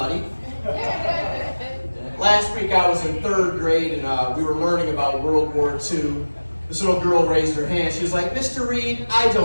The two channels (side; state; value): both; inverted; correlation -1.00